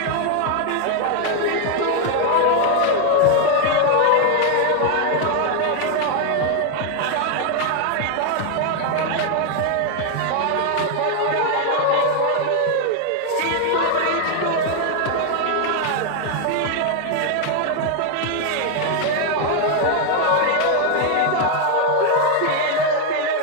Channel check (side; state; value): both; different; correlation 0.01